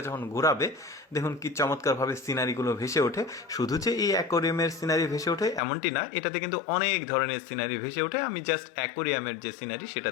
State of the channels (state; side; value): drops out; right; at 5.6 s